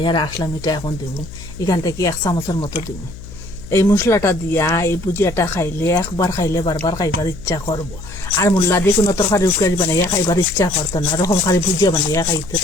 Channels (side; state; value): left; noise; hum, 15 dB below the sound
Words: রাখলাম এটা এখন দিব, এখান থেকে 1 চামচের মতো দিব। এই মশলাটা দিয়া এই বুঝিয়াটা খাইলে একবার খাইলে বারবার খাইবার ইচ্ছা করবো। আর মূল্যা দিয়ে কোনো তরকারি উকারি বানাইয়া খাইবার ইচ্ছা করতো না, এরকম খালি ভুজিয়া বানাইয়া খাইতে